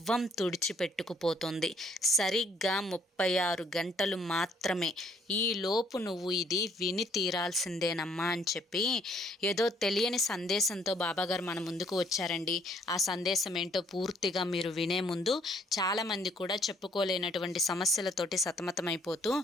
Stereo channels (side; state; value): both; normal; correlation 0.63